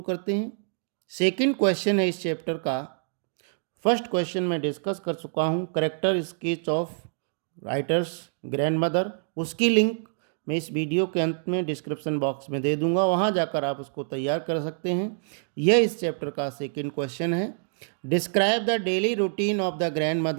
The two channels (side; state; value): left; silent; digital silence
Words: करते हैं। सेकंड क्वेश्चन है इस चैप्टर का। फर्स्ट क्वेश्चन मैं डिस्कस कर चुका हूँ, character sketch of writers grand mother. उसकी लिंक मैं इस वीडियो के अंत में डिस्क्रिप्शन बॉक्स में दे दूंगा, वहाँ जाकर आप उसको तैयार कर सकते हैं। यह इस चैप्टर का सेकंड क्वेश्चन है। Describe the daily routine of the grand